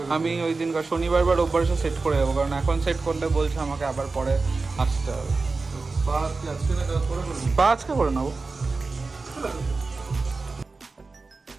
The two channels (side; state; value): left; quieter; 3.9 dB